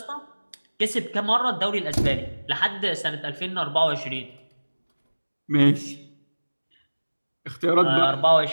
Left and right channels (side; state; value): both; inverted; correlation -1.00